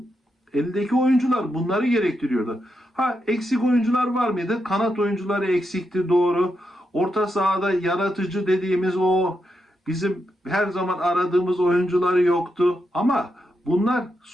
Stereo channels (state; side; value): normal; both; correlation 0.84